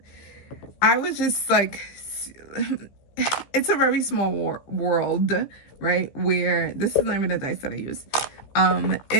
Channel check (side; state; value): right; late; 15 ms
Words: I was just like, it's a very small world, right? Where this is not even a dice that I use.